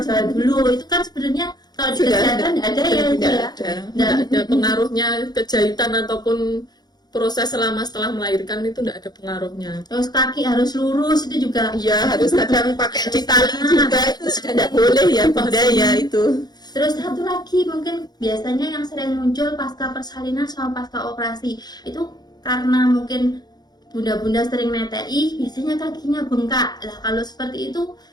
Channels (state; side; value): late; right; 0.20 ms